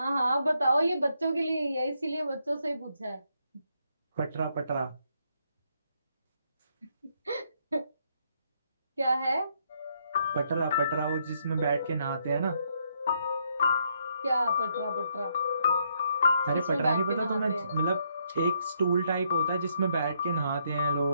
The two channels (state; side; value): inverted; both; correlation -0.74